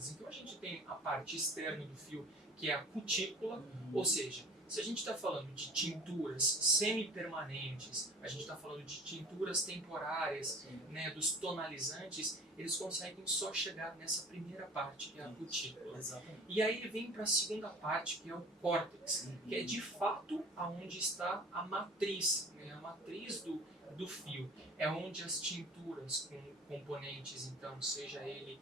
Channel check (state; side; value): normal; both; correlation 0.44